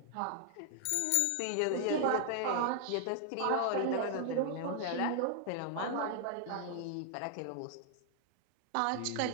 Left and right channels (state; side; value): different; both; correlation 0.00